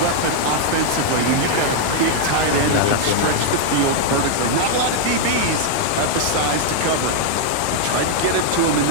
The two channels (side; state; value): both; different; correlation 0.00